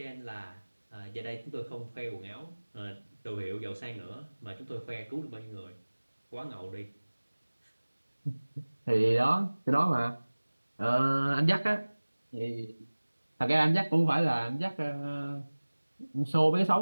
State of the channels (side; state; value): both; inverted; correlation -1.00